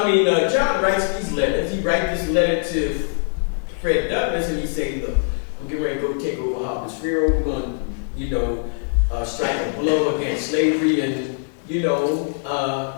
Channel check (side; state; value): right; silent; 63 dB below the other